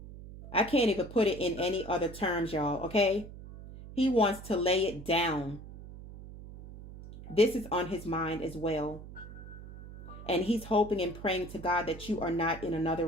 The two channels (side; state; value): right; noise; hum, 14 dB below the sound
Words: I can't even put it in any other terms, y'all, okay? He wants to lay it down. This is on his mind as well. And he's hoping and praying to God that you are not in another